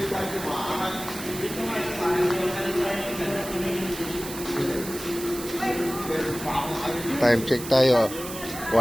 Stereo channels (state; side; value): noise; right; hiss, 10 dB below the sound